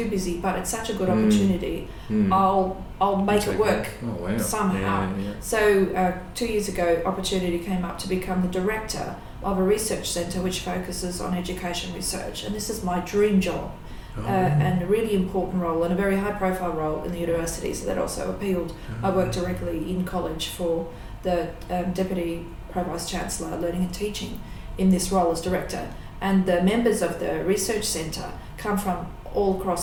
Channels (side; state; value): both; identical; correlation 1.00